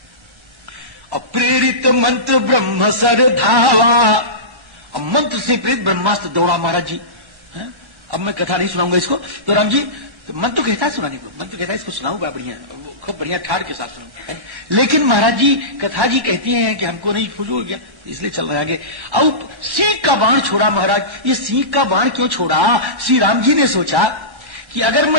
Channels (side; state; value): left; late; 1.3 ms